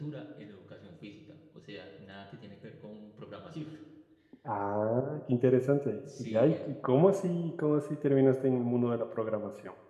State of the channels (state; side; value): identical; both; correlation 1.00